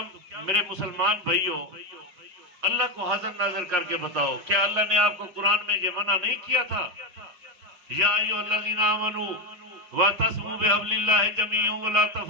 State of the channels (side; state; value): left; late; 5.1 ms